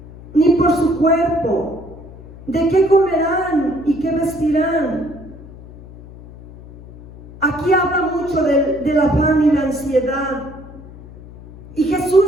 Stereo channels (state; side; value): noise; left; hum, 18 dB below the sound